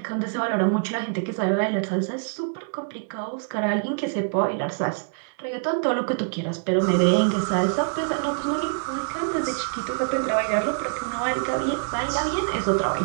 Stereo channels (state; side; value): silent; left; digital silence